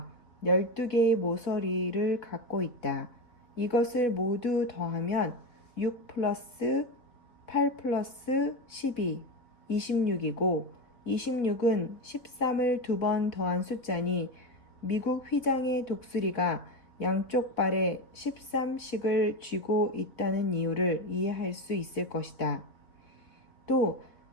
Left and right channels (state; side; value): late; right; 4.1 ms